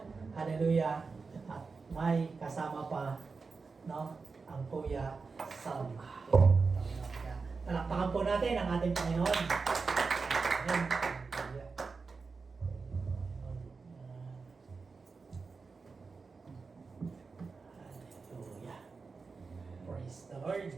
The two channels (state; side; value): quieter; left; 4.6 dB